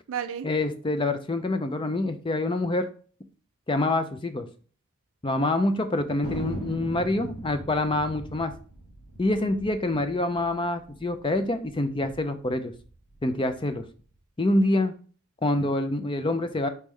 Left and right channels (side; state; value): both; normal; correlation 0.60